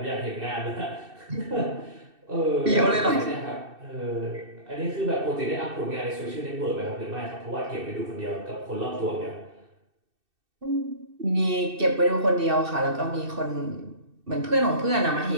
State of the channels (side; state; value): left; late; 2.6 ms